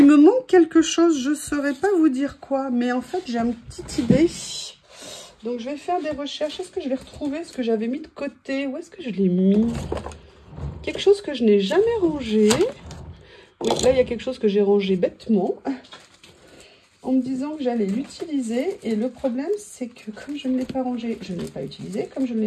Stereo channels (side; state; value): both; identical; correlation 1.00